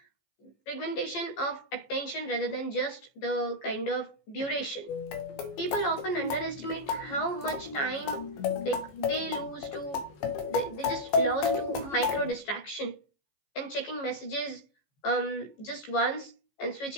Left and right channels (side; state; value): right; late; 14 ms